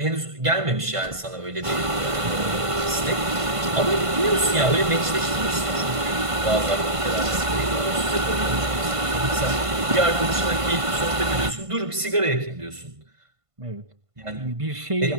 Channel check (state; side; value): late; left; 1.5 ms